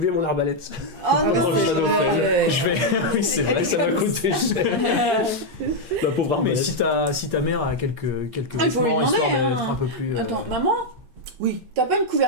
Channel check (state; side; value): late; left; 8.6 ms